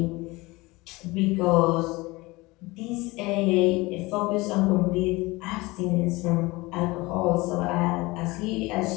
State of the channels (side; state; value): right; quieter; 22.3 dB